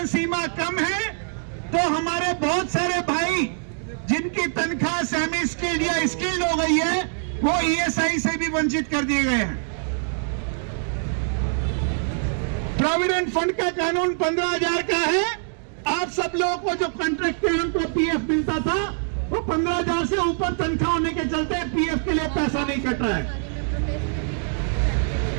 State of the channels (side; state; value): left; silent; 63 dB below the other